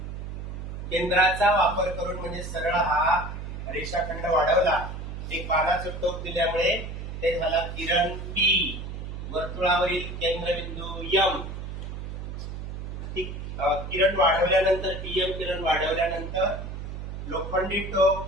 केंद्राचा वापर करून म्हणजे सरळ हा रेषाखंड वाढवला। एक बाणाचं टोक दिल्यामुळे ते झाला किरण P, वर्तुळावरील केंद्रबिंदू M। किरण वाढवल्यानंतर PM किरण वाढवल्यानंतर लोखंडी टोक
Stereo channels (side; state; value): right; noise; hum, 7 dB below the sound